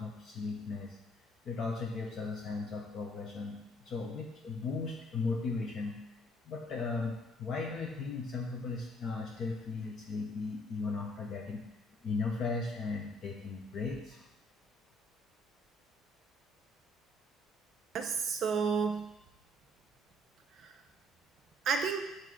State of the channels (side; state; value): both; normal; correlation 0.62